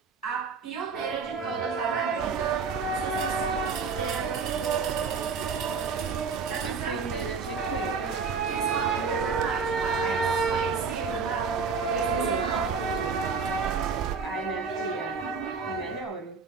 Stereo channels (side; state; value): left; quieter; 5.2 dB